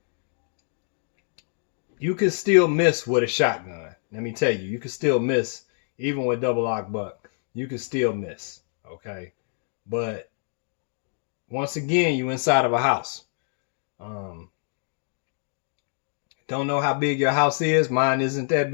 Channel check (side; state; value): right; silent; 58 dB below the other